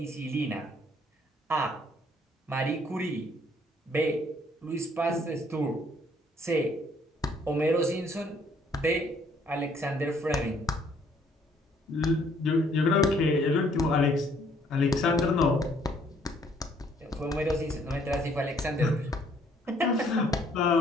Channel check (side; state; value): both; normal; correlation 0.63